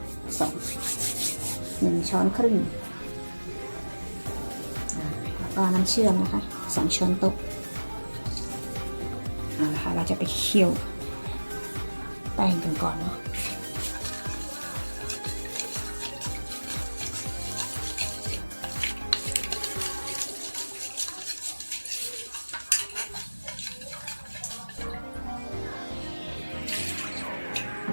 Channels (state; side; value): inverted; both; correlation -1.00